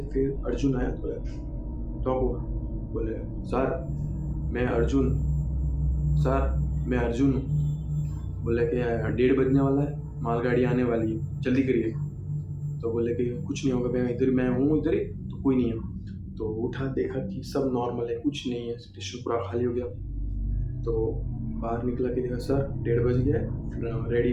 फिर अर्जुन आया, बोला टॉप हुआ, बोले सर मैं अर्जुन हूँ। बोले कि 1:30 बजने वाला है, मालगाड़ी आने वाली है, जल्दी करिए। तो बोले कि कुछ नहीं होगा, मैं हूँ इधर ही, तो कोई नहीं है। तो उठा, देखा कि सब नॉर्मल है, कुछ नहीं है, स्टेशन पूरा खाली हो गया। तो बाहर निकला कि देखा सर 1:30 बज गया है,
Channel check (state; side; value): identical; both; correlation 1.00